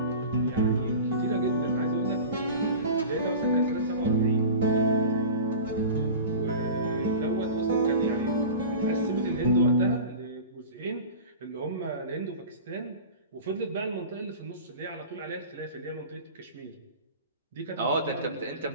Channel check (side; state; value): both; inverted; correlation -0.35